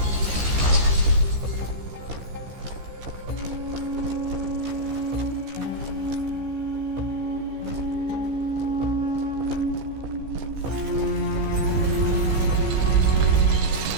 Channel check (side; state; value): left; late; 15 ms